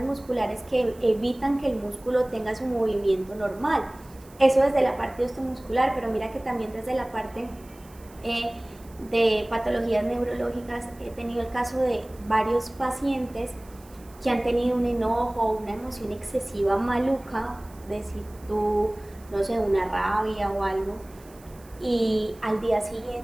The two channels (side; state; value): right; noise; hiss, 25 dB below the sound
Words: musculares que evitan que el músculo tenga su movimiento normal. Eso desde la parte osteomuscular, pero mira que también desde la parte de patologías neurológicas he tenido el caso de varios pacientes que han tenido un enojo, una emoción excesiva maluca, de si tú, no sé, una rabia o algo, y al día